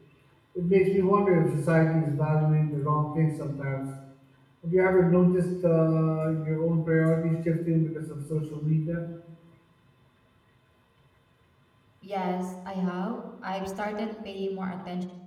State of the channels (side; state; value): both; identical; correlation 1.00